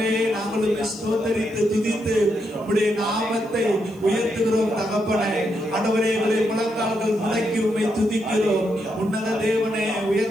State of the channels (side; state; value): right; noise; hiss, 29 dB below the sound